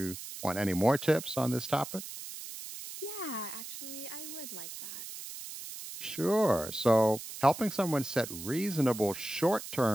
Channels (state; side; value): noise; right; hiss, 10 dB below the sound